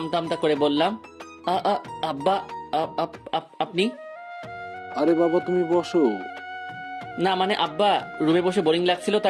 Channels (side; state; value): both; identical; correlation 1.00